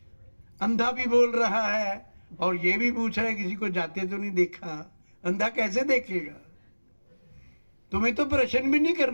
अंधा भी बोल रहा है और ये भी पूछ रहा है किसी को जाते तो नहीं देखा। अंधा कैसे देखेगा? तुम्हें तो प्रश्न भी नहीं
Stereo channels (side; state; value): both; inverted; correlation -1.00